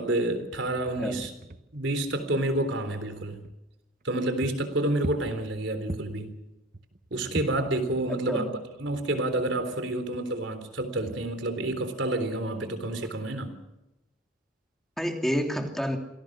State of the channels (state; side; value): normal; both; correlation 0.36